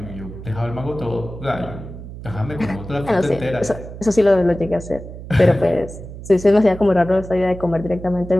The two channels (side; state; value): right; noise; hum, 12 dB below the sound